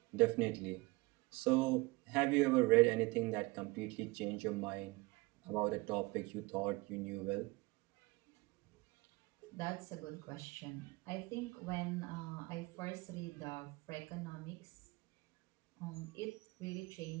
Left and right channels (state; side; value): quieter; left; 23.7 dB